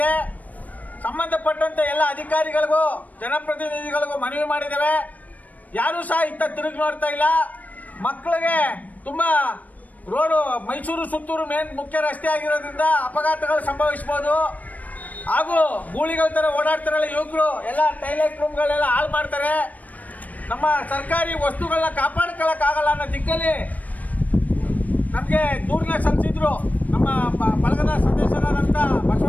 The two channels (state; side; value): late; right; 0.075 ms